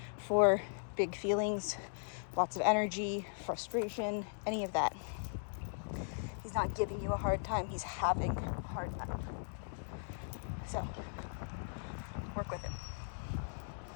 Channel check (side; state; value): right; silent; digital silence